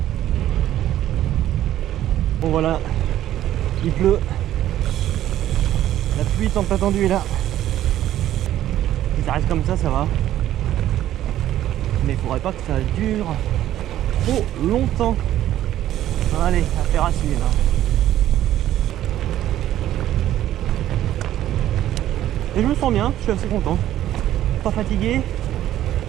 Bon voilà, il pleut, la pluie tant attendue est là. Si ça reste comme ça va. Mais il faudrait pas que ça dure trop longtemps. Allez, affaire à suivre. Et je me sens bien, je suis assez content. Pas fatigué.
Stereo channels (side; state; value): left; quieter; 12.7 dB